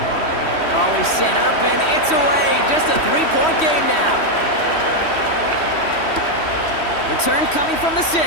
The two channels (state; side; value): late; right; 3.1 ms